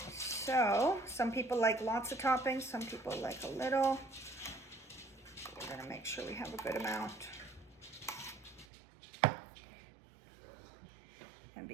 So, some people like lots of toppings, some people like a little. We're gonna make sure we have a good amount. And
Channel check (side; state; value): left; drops out; at 8.7 s